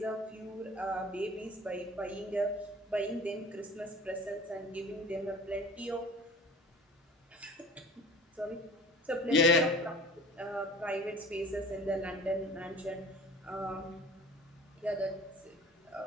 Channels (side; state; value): both; normal; correlation 0.43